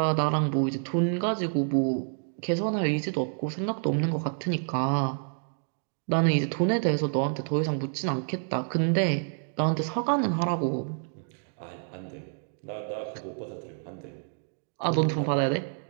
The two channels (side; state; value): left; silent; 59 dB below the other